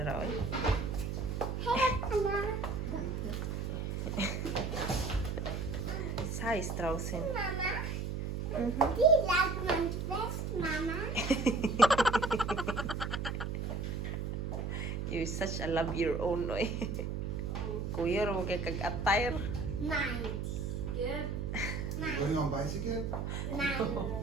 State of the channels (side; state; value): right; noise; hum, 2 dB below the sound